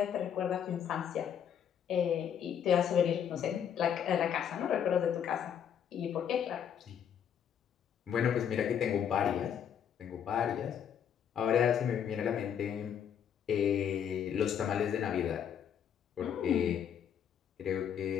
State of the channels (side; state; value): right; quieter; 8.7 dB